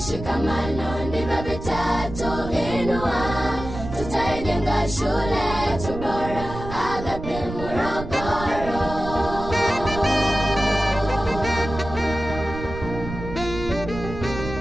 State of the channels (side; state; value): right; noise; rumble, 9 dB below the sound